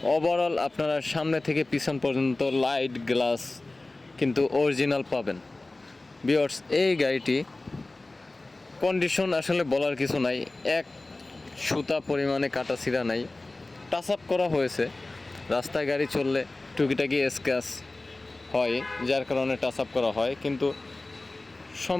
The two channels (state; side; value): quieter; right; 3.0 dB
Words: ওভারঅল আপনারা সামনে থেকে পিছন পর্যন্ত লাইট গ্লাস কিন্তু অরিজিনাল পাবেন। ভিউয়ার্স, এই গাড়িটি কন্ডিশন আসলে বলার কিছু নাই, এক সুতা পরিমাণে কাটা ছিঁড়া নাই, টাচ আপ করা হয়েছে। রাস্তায় গাড়ি চললে টুকিটাকি স্ক্র্যাচ হয়, যার কারণে টাচ আপ করা হয়, কিন্তু